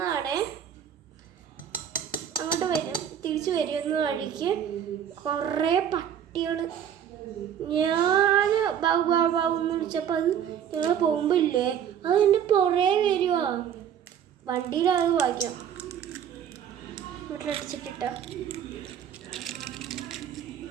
അങ്ങോട്ട് തിരിച്ചു വരുന്ന വഴിക്ക് കുറേ പട്ടികൾ. ഞാൻ ബാബുന്ന് വിളിച്ചപ്പോൾ അത് ഞങ്ങൾ പോകുമ്പോൾ ഇല്ലേ, അത് എൻ്റെ പുറേ വരുവാ. വണ്ടിയിലത് വായിക്കാം. വീട്ടിലടിച്ചിട്ടിട്ട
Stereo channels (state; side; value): quieter; left; 9.1 dB